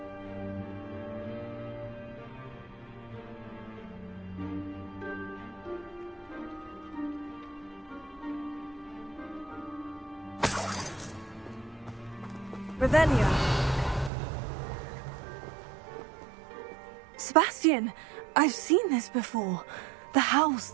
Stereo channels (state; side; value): drops out; left; at 14.1 s